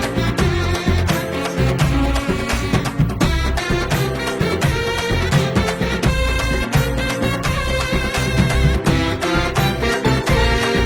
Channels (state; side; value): identical; both; correlation 1.00